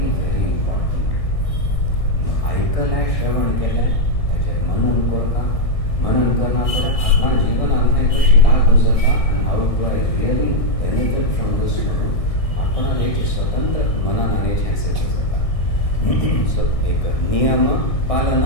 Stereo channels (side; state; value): right; late; 1.6 ms